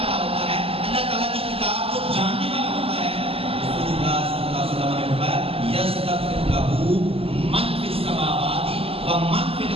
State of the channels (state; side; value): late; left; 0.28 ms